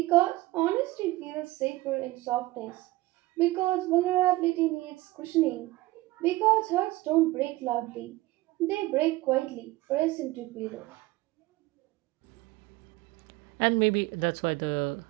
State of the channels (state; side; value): quieter; left; 19.0 dB